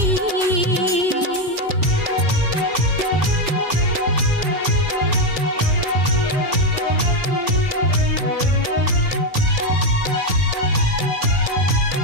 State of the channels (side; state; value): left; late; 2.6 ms